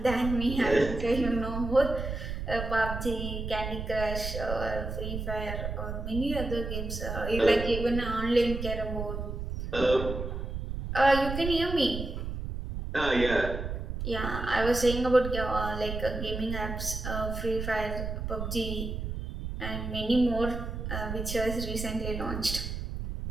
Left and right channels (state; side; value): noise; right; rumble, 5 dB below the sound